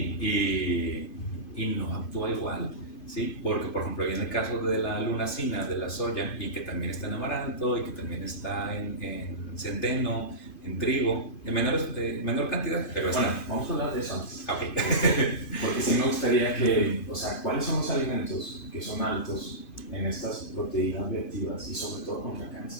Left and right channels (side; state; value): right; late; 2.5 ms